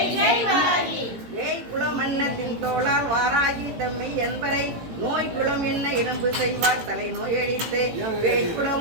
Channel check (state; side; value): late; left; 17 ms